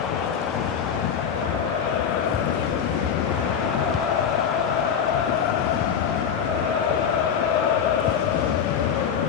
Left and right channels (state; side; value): quieter; right; 7.7 dB